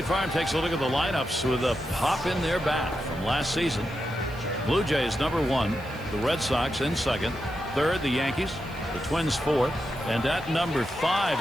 Farm takes a look at the lineups with a pop in their bat from last season. Blue Jays number 1, the Red Sox in second, third the Yankees, the Twins fourth, and at number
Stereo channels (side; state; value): right; noise; hiss, 24 dB below the sound